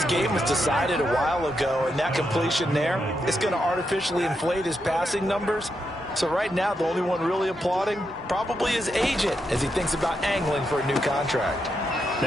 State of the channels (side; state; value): both; normal; correlation 0.83